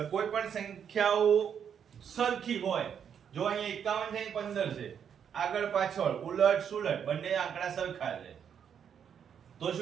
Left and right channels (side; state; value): left; quieter; 8.0 dB